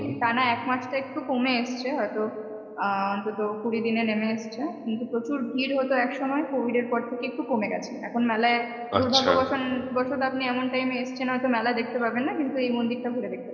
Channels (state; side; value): identical; both; correlation 1.00